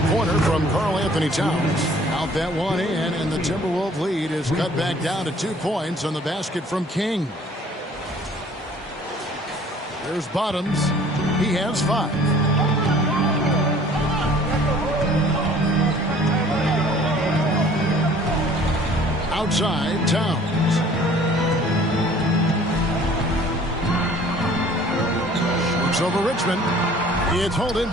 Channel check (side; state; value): both; normal; correlation 0.53